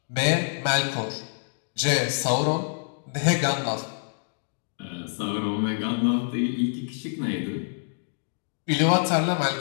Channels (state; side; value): silent; right; digital silence